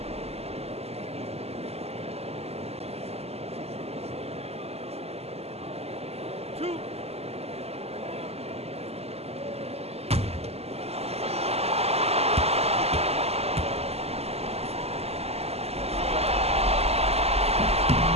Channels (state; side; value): late; left; 0.30 ms